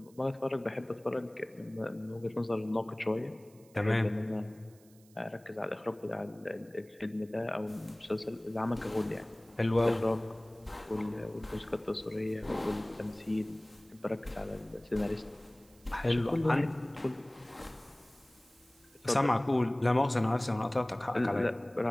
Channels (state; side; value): noise; right; hiss, 28 dB below the sound